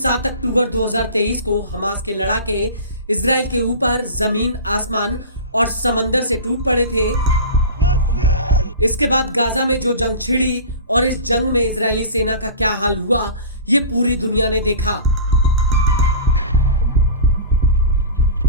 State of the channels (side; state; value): both; inverted; correlation -0.34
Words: अक्टूबर 2023 को हमास के लड़ाके इजराइल के ऊपर जमीन, आसमान और समंदर से टूट पड़े थे। इसके बाद गाजा में जो जंग छिड़ी और इस जंग में इजरायली सेना का क्या हाल हुआ, ये पूरी दुनिया ने देखा।